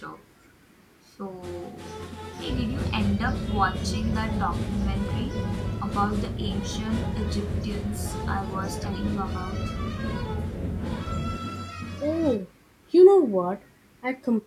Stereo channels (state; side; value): identical; both; correlation 1.00